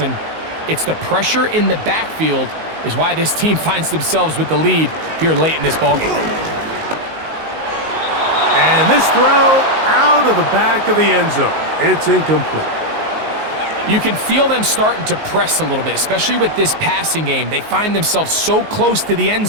it's the pressure in the backfield is why this team finds themselves with the lead here late in this ballgame. And this throw out of the back of the end zone. It's incomplete. You can feel them starting to press a little bit, especially with this passing game. They find themselves so close to the end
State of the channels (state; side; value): late; left; 19 ms